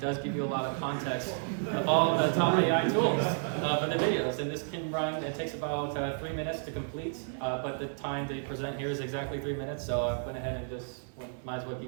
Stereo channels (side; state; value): left; silent; digital silence